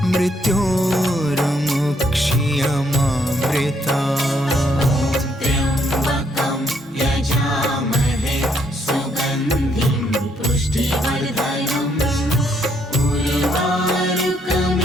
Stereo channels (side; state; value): both; normal; correlation 0.72